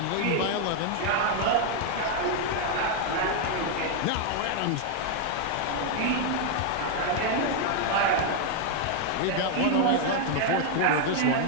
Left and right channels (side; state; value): both; different; correlation 0.00